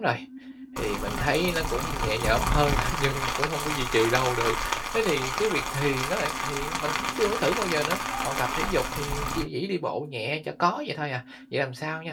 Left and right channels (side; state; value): both; identical; correlation 1.00